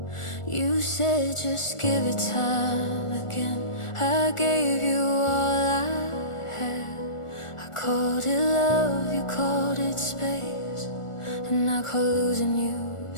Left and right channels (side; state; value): right; late; 1.4 ms